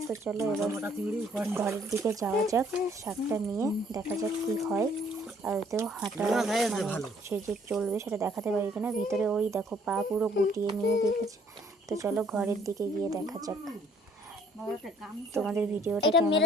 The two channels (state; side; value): normal; both; correlation 0.62